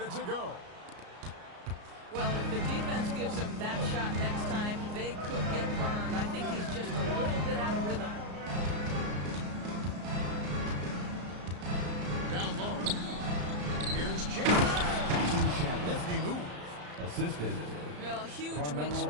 to go. Well, if the defense gives him that shot next time, they could get burned. I think he's just a little bit out of rhythm. Down low. Here's Chandler. Nifty move. Assisted. Well, huge Carmelo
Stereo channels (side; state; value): left; late; 34 ms